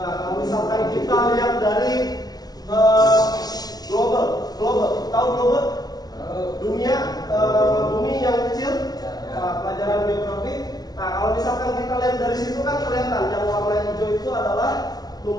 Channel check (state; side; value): late; right; 0.19 ms